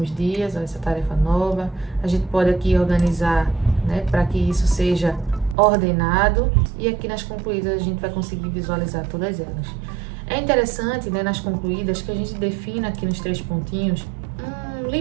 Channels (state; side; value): drops out; left; at 5.6 s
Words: dias, ó, essa tarefa nova, a gente pode aqui organizar, né, para que isso seja ordenado, e aqui nas concluídas a gente vai conseguir visualizar todas elas. É interessante, né, nas concluídas que a gente defina aqui nos 3 pontinhos um